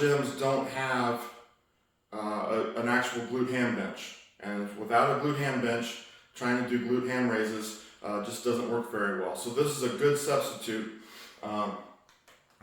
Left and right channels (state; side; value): identical; both; correlation 1.00